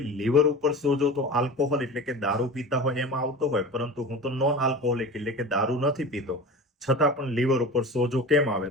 લીવર ઉપર સોજો તો આલ્કોહોલ એટલે કે દારૂ પીતા હોય એમાં આવતો હોય, પરંતુ હું તો નોન આલ્કોહોલિક એટલે કે દારૂ નથી પીતો, છતાં પણ લીવર ઉપર સોજો કેમ આવે?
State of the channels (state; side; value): normal; both; correlation 0.33